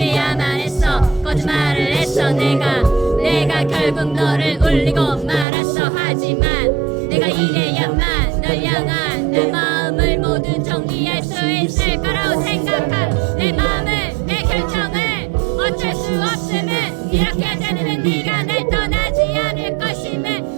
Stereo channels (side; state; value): left; drops out; at 5.5 s